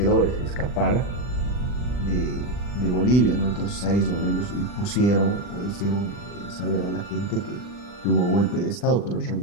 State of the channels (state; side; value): late; right; 40 ms